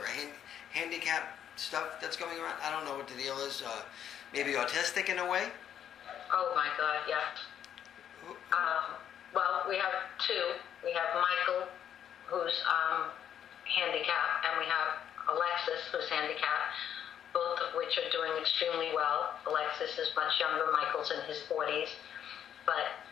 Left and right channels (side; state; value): right; quieter; 9.5 dB